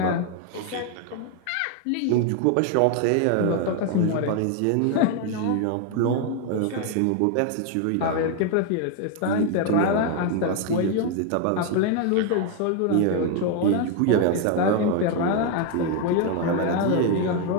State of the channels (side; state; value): both; different; correlation 0.01